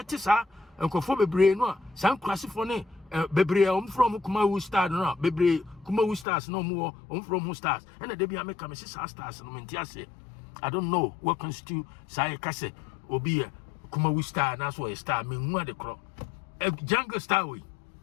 sa enkofo bebre no a san kwasifo ne bebre from Kumawu star no bebre Kumawu stars no more from who stars and they be make am stars no menti ase I don't know what constitute say kase obi a Kumawu star na so a star me hu ade kro a jungle star we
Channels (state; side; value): drops out; right; at 6.2 s